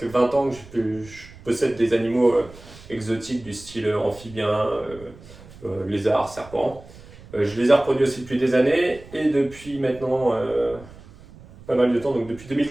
20 ans que je possède des animaux exotiques du style amphibien, lézard, serpent. Je les ai reproduits aussi depuis des années et depuis maintenant pas mal de temps, donc depuis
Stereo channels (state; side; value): noise; right; rumble, 20 dB below the sound